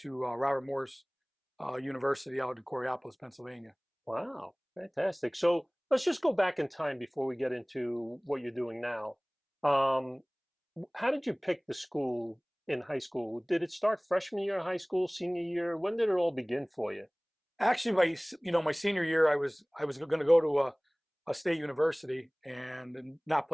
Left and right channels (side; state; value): both; identical; correlation 1.00